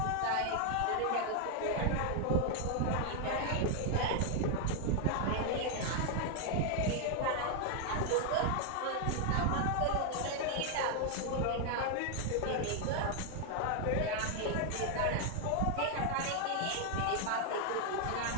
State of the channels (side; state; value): both; different; correlation 0.00